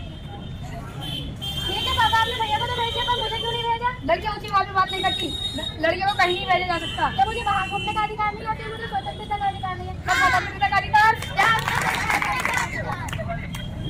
ठीक है पापा, आपने भैया को तो भेज दिया, पर मुझे क्यों नहीं भेजा? लड़कियां ऊंची आवाज में बात नहीं करती। लड़कियों को कहीं नहीं भेजा जा सकता। तो मुझे बाहर घूमने का अधिकार नहीं होता, मुझे स्वतंत्रता का अधिकार नहीं है। स्वतंत्रता का अधिकार?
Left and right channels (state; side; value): identical; both; correlation 1.00